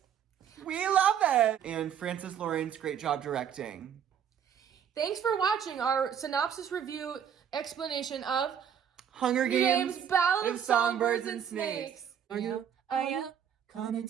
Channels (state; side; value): quieter; left; 8.6 dB